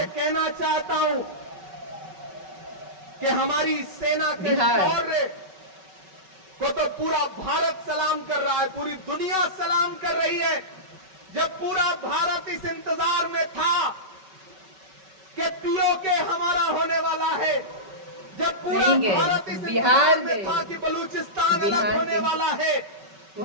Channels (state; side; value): late; left; 5.3 ms